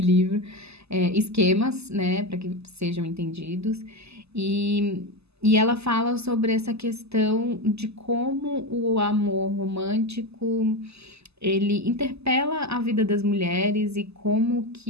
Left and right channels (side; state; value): left; late; 0.79 ms